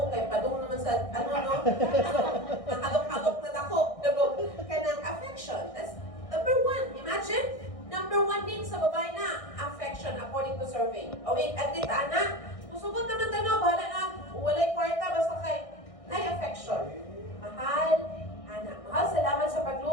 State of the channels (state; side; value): late; right; 1.6 ms